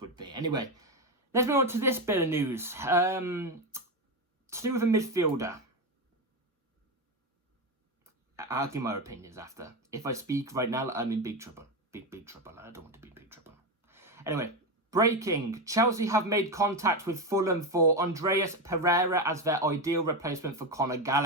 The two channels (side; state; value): both; normal; correlation 0.13